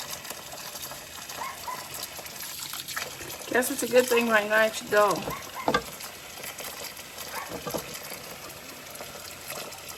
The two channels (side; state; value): both; identical; correlation 1.00